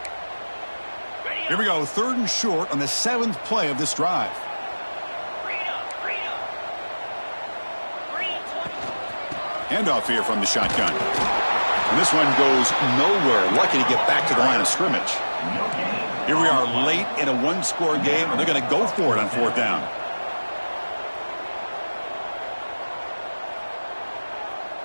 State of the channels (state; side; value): inverted; both; correlation -1.00